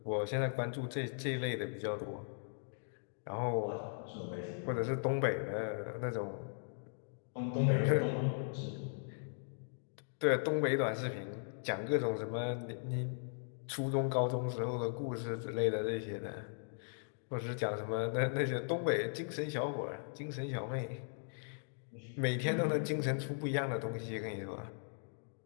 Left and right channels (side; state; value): right; silent; digital silence